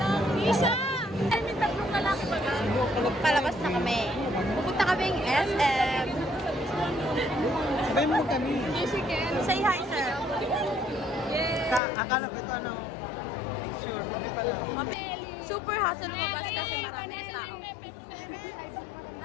Isa! Ay, may tatlong lalaki ba? Palabas na kami. Pupunta kaming SM. Sabay mo kami. Say hi, sir. Akala ko ito ano, picture. Kami pala. Super hassle lumabas kasi marami tao.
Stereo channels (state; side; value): drops out; right; at 11.8 s